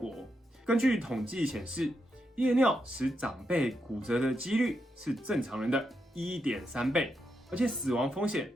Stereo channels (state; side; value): normal; both; correlation 0.83